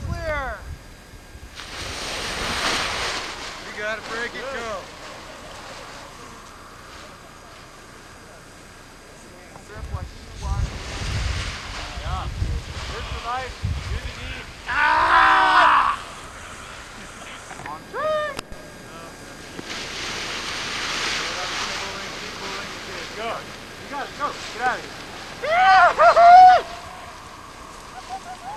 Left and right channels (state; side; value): identical; both; correlation 1.00